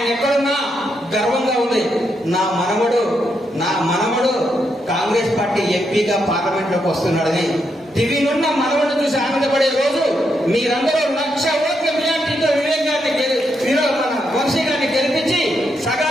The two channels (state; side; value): normal; both; correlation 0.80